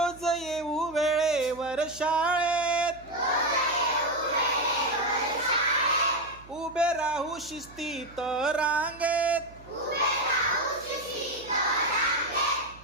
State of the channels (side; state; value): right; noise; hum, 22 dB below the sound